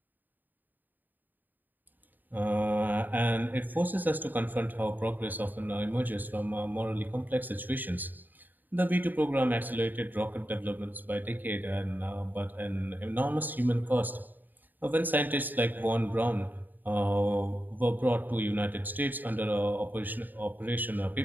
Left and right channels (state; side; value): late; left; 0.088 ms